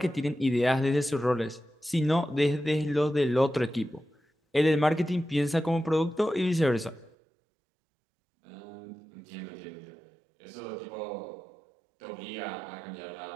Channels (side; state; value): left; drops out; at 7.1 s